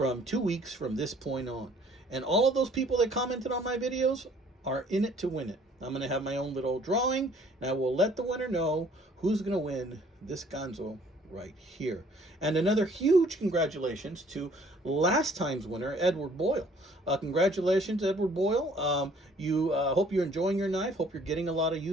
2 weeks from this point on. And all of those people that commented on my videos are in it to win it. I'm going to have my own little drawing, and I will let the winner know who's going to win this Ganzo right here. And another huge congratulations to last time's winner, Edward Boyle. Congratulations, Edward Boyle. Hope you're enjoying your knife. Hope you're getting a lot of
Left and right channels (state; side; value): normal; both; correlation 0.58